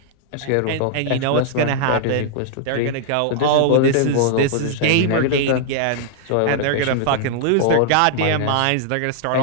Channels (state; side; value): different; both; correlation -0.01